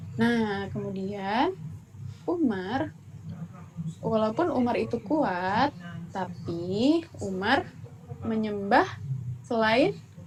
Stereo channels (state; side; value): identical; both; correlation 1.00